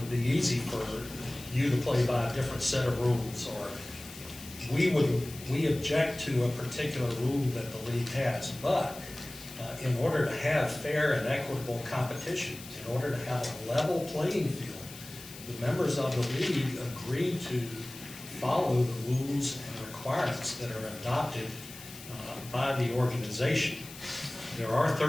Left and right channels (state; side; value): noise; left; hiss, 15 dB below the sound